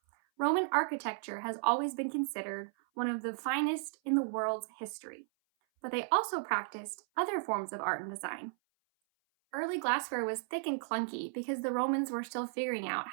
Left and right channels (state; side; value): silent; left; 55 dB below the other